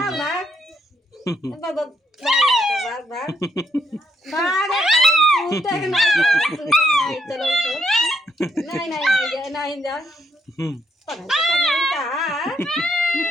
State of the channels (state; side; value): normal; both; correlation 0.75